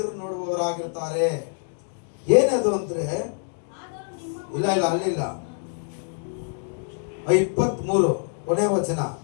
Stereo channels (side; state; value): right; silent; digital silence